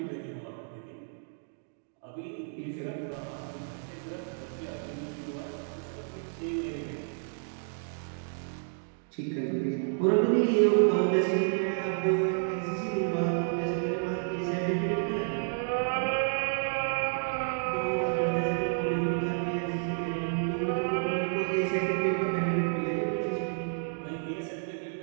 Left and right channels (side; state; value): left; silent; digital silence